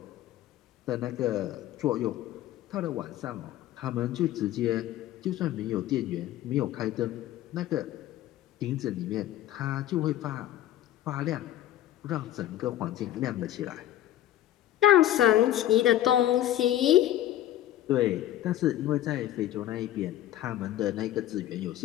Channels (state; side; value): quieter; right; 13.1 dB